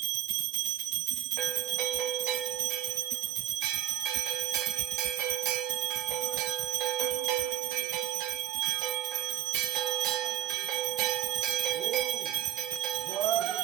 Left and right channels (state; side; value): quieter; left; 12.2 dB